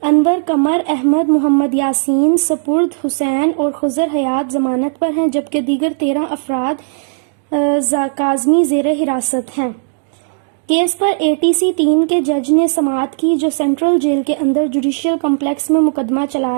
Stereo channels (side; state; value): left; silent; digital silence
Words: انور، قمر احمد، محمد یاسین، سپرد حسین اور خضر حیات ضمانت پر ہیں، جبکہ دیگر 13 افراد کاظمی زیر حراست ہیں۔ کیس پر ATC 3 کے جج نے سماعت کی، جو سینٹرل جیل کے اندر جوڈیشل کمپلیکس میں مقدمہ